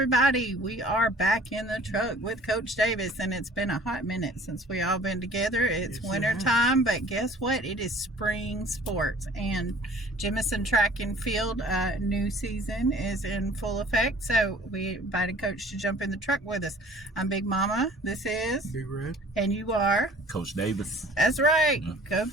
We are back in the truck with Coach Davis, and it's been a hot minute since we all been together. It's winter time, but guess what? It is spring sports, and Jemison Track and Field new season is in full effect. So we invited Coach to jump in the truck with us. I'm Big Mama. This is Big Red, and you are Coach Davis. That's right. Go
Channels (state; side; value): normal; both; correlation 0.50